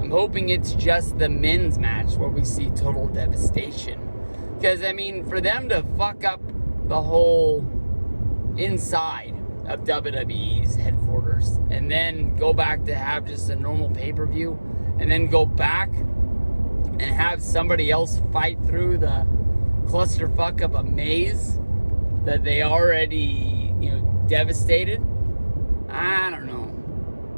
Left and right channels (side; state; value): both; inverted; correlation -1.00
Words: hoping it's just the men's match where we see total devastation. Because, I mean, for them to fuck up the whole inside of WWE's headquarters and then go back to have just a normal pay-per-view and then go back and have somebody else fight through the clusterfuck of a maze that they already, devastated. I don't